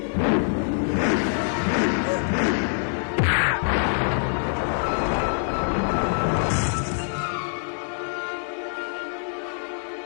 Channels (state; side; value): silent; right; 62 dB below the other